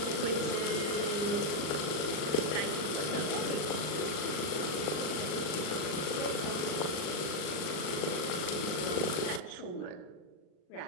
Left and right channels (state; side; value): late; right; 39 ms